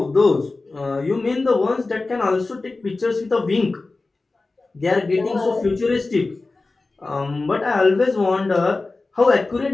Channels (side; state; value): right; quieter; 3.5 dB